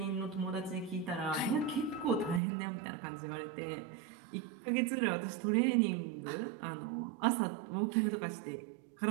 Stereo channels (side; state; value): left; drops out; at 2.4 s